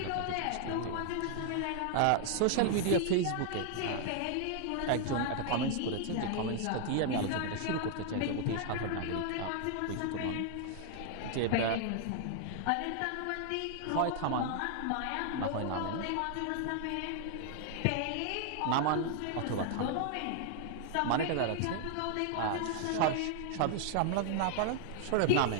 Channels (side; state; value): both; different; correlation 0.00